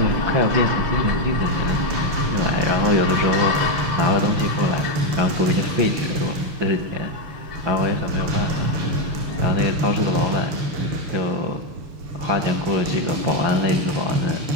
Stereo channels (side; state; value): left; late; 6.7 ms